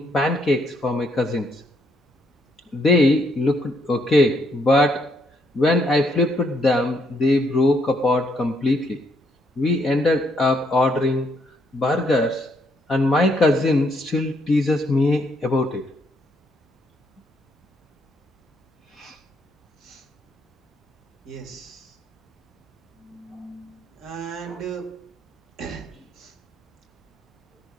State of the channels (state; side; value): normal; both; correlation 0.73